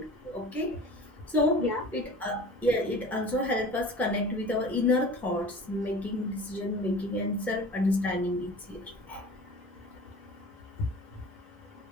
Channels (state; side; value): normal; both; correlation 0.40